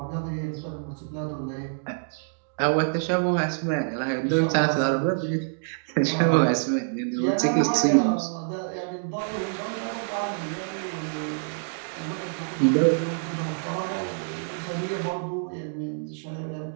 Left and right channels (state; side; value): silent; left; digital silence